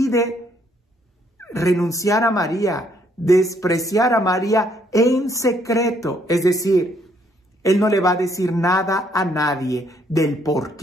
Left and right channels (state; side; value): normal; both; correlation 0.69